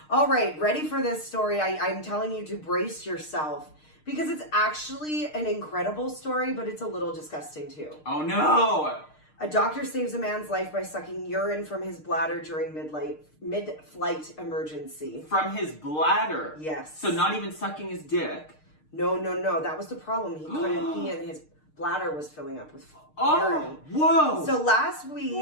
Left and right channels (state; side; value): late; right; 6.5 ms